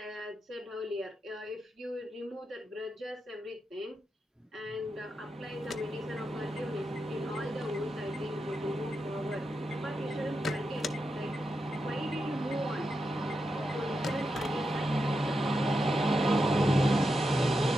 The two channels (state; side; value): normal; both; correlation 0.87